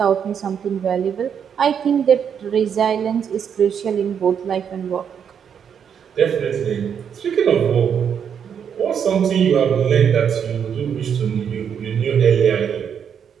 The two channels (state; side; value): quieter; left; 7.8 dB